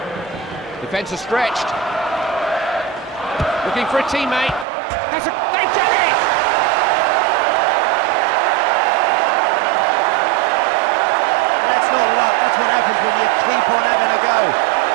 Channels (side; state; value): left; drops out; at 4.7 s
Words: Defence is stretched. Looking for a teammate. They've done it! That's not luck, that's what happens when you keep on having a go.